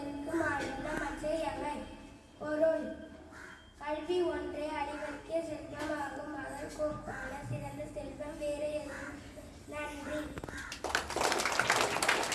மாநில மற்றையவை. பொருள்: கல்வி ஒன்றே அறிவிற்கே செல்வமாகும். அதற்கொப்பான சிறந்த செல்வம் வேறு எதுவும். நன்றி.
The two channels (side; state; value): both; identical; correlation 1.00